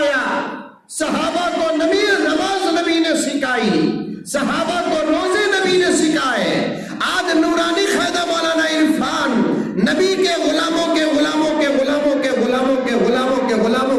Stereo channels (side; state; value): both; identical; correlation 1.00